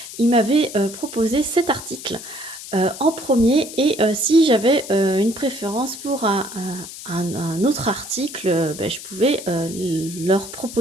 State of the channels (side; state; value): left; noise; hiss, 12 dB below the sound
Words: ils m'avaient proposé cet article en premier et si j'avais une préférence pour un autre article, ben, je pouvais leur